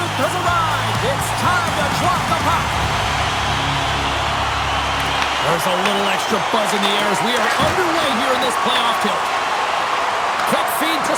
has arrived. It's time to drop the puck. There's a little extra buzz in the air as we are underway here in this playoff tilt. Quick feed to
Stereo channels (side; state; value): both; identical; correlation 1.00